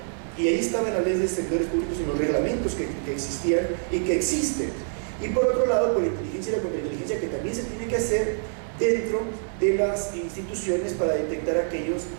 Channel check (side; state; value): left; silent; digital silence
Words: Y ahí estaban las leyes de servidores públicos y los reglamentos que existían y que existen. Y por otro lado, por la inteligencia y la contrainteligencia que también se tiene que hacer dentro de las instituciones para detectar a aquellos